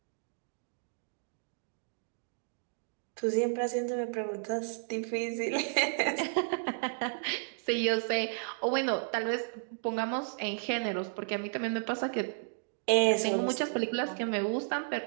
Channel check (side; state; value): left; silent; digital silence